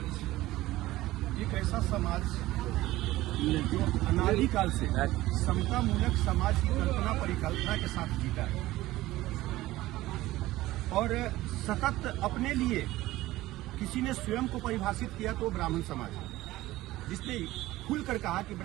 एक ऐसा समाज जो अनादिकाल से समतामूलक समाज की कल्पना परिकल्पना के साथ जीता है और सतत अपने लिए किसी ने स्वयं को परिभाषित किया तो ब्राह्मण समाज है, जिसने खुलकर कहा कि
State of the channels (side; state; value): left; quieter; 17.0 dB